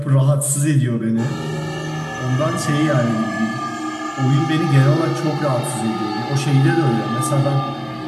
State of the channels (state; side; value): identical; both; correlation 1.00